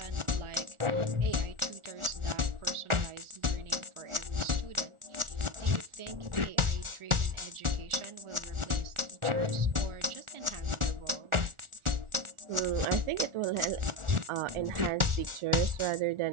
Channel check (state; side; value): late; left; 1.4 ms